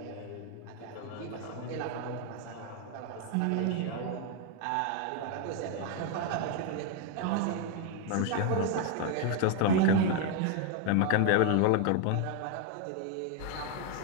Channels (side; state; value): both; different; correlation 0.00